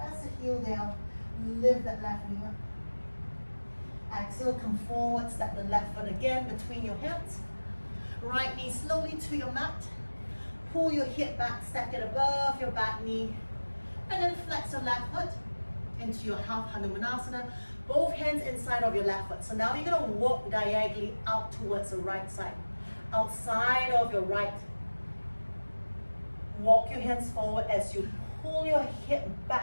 the heel down, lift that left knee up. Exhale, come forward, step the left foot again between your hands. Right knee slowly to your mat. Pull your hip back, stack it above your back knee. And then flex your left foot into your half Hanumanasana. Both hands inside of your left foot. So now you're going to walk diagonally out towards the right side. Outside of your right. Walk your hands forward as you pull your hip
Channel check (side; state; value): both; inverted; correlation -1.00